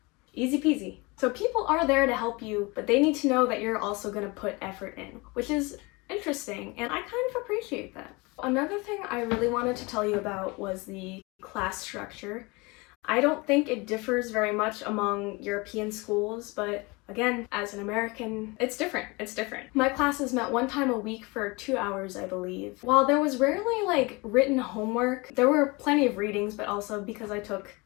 Easy peasy. So people are there to help you, but they need to know that you're also going to put effort in, which is interesting, and I kind of appreciate that. Another thing I really wanted to tell you about was the class structure. I don't think it differs very much among European schools, but again, as an American, it's different. My classes met one time a week for 2 hours, I believe. While there was rarely written homework, there were plenty of readings, but also because I took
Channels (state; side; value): quieter; right; 25.9 dB